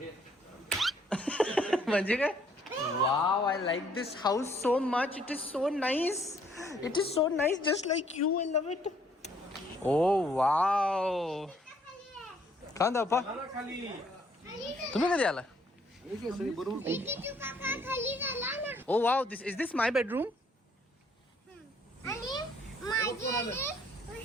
म्हणजे काय? Wow, I like this house so much. It is so nice. It is so nice, just like you. I love it. Oh wow. Khan दापा, तुम्ही कधी आला? Oh wow, this is this my bedroom.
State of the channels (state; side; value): normal; both; correlation 0.65